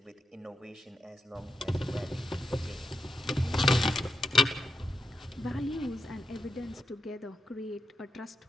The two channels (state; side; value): normal; both; correlation 0.84